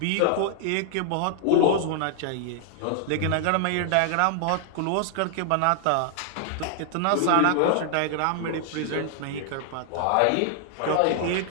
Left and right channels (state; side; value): different; both; correlation 0.00